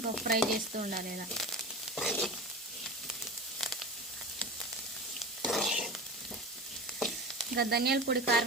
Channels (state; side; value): normal; both; correlation 0.31